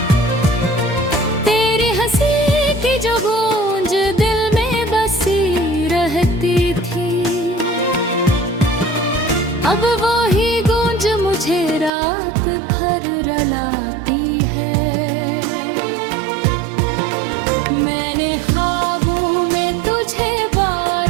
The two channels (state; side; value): drops out; left; at 11.9 s